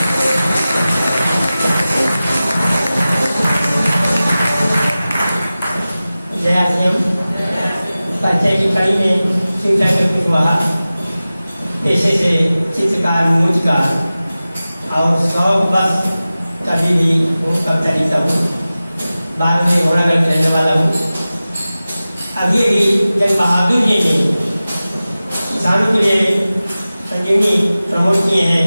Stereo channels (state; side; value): inverted; both; correlation -0.96